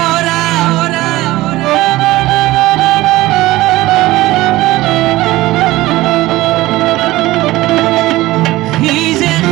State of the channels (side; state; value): left; quieter; 18.0 dB